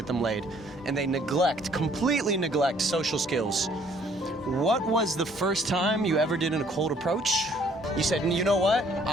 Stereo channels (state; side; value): normal; both; correlation 0.61